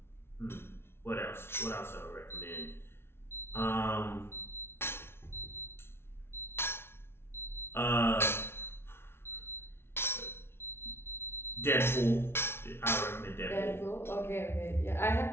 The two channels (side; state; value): right; late; 0.12 ms